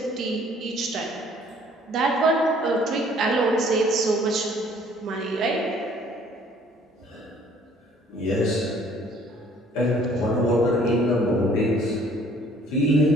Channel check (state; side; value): normal; both; correlation 0.58